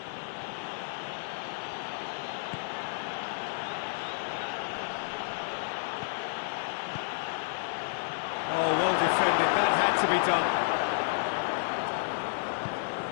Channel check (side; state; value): right; silent; digital silence